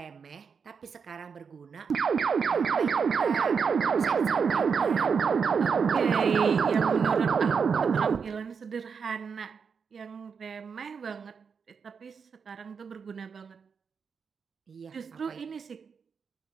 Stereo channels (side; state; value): left; quieter; 6.0 dB